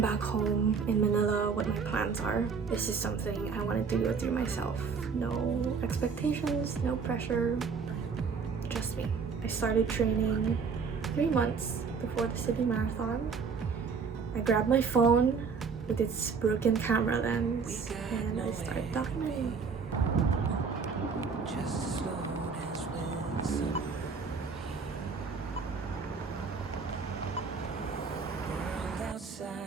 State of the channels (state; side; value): quieter; left; 5.5 dB